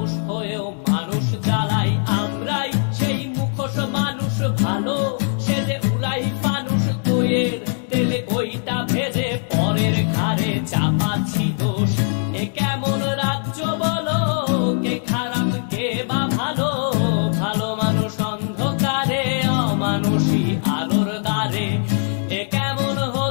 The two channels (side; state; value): right; silent; 65 dB below the other